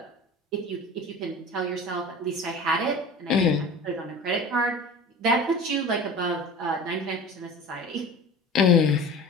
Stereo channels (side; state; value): both; normal; correlation 0.37